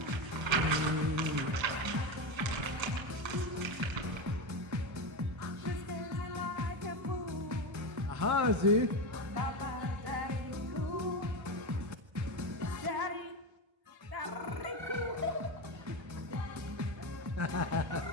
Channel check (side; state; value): left; late; 1.3 ms